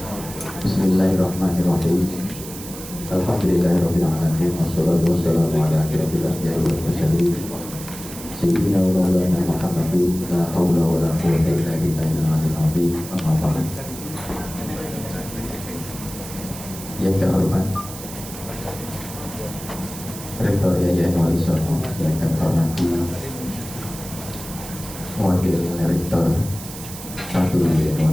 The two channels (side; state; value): right; noise; hiss, 12 dB below the sound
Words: Bismillahirrahmanirrahim. Alhamdulillahirabbil alamin wassalatu wassalamu ala asyrofil anbiya'i wal mursalin sayyidina wa maulana Muhammadin la haula wa la quwwata illa billahil aliyyil azim. Amma ba'd. Yang terhormat Rektor Yayasan Wali Songo, yang kami hormati Wakil Rektor 1 Yayasan